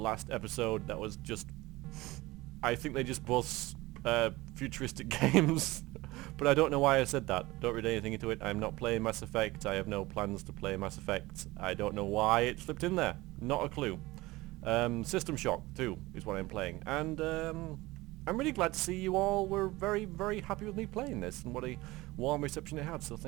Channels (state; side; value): quieter; left; 20.1 dB